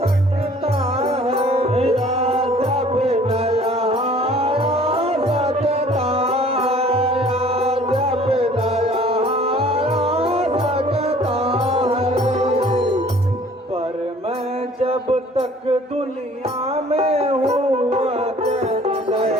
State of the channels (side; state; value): both; normal; correlation 0.53